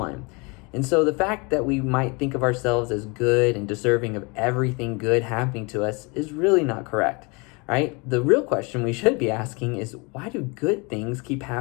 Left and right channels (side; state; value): right; quieter; 29.2 dB